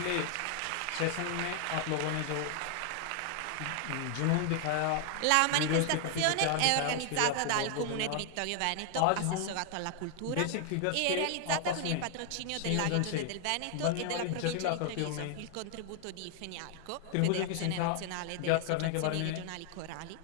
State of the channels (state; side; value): different; both; correlation 0.00